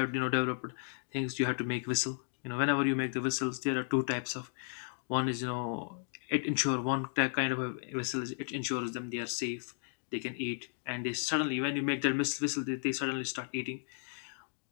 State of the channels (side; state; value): right; silent; digital silence